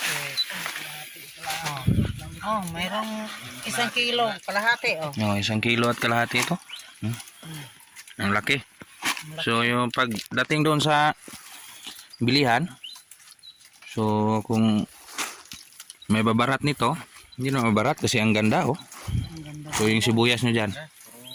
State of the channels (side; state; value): both; identical; correlation 1.00